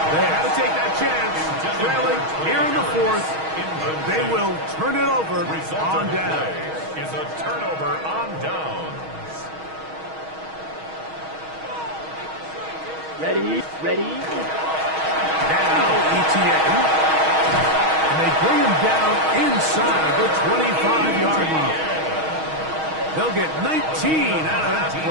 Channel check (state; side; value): late; left; 6.3 ms